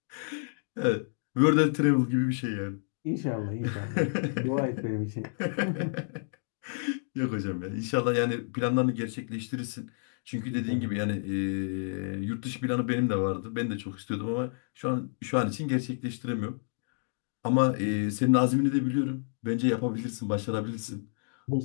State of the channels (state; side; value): silent; right; digital silence